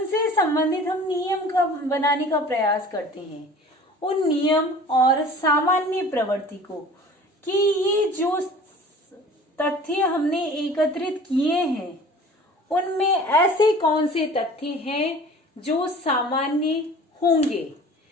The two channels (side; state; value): both; normal; correlation 0.44